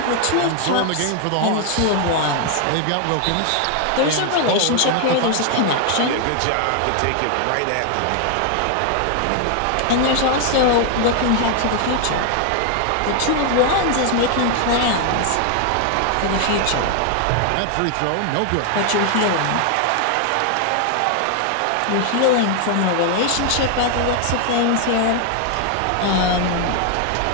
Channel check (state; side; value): different; both; correlation 0.00